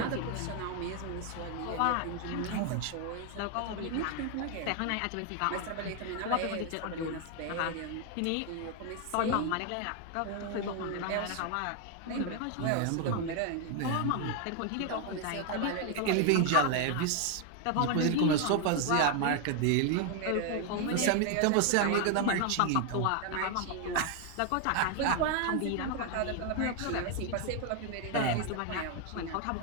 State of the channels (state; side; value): different; both; correlation 0.01